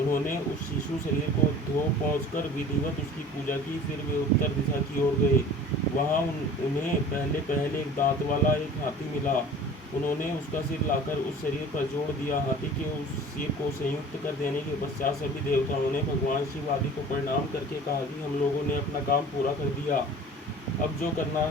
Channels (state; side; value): normal; both; correlation 0.43